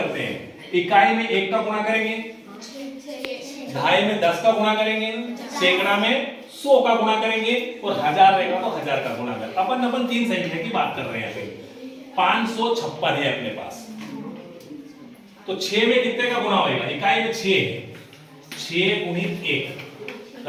हैं। इकाई में 1 का गुणा करेंगे, दहाई में 10 का गुणा करेंगे, सैकड़ा में 100 का गुणा करेंगे और हजार रहेगा तो 1000 का गुणा करेंगे। अपन 3 संख्या की बात कर रहे हैं। 556 है अपने पास, तो 6 में कितने का गुणा होगा, इकाई में 6 है, 6 गुणित 1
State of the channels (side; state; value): both; identical; correlation 1.00